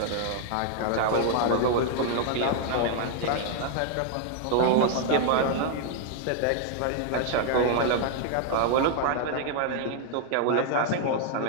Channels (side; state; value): both; different; correlation 0.00